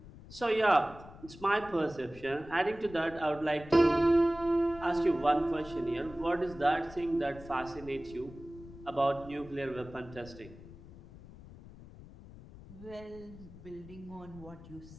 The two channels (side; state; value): left; noise; rumble, 18 dB below the sound